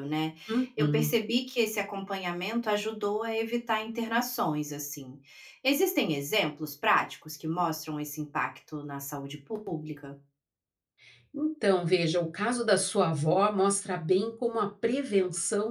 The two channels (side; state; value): both; identical; correlation 1.00